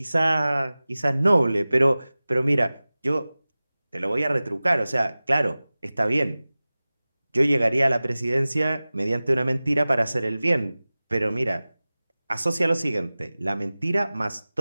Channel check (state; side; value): inverted; both; correlation -0.98